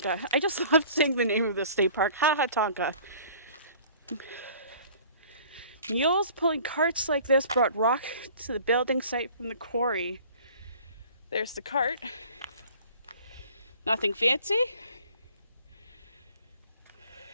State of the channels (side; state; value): both; inverted; correlation -0.49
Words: I just love saying the name of the state park, Hahatonka. Mules pulling carts like this brought rock to the building site from the quarry. There's the cart. Nothing fancy.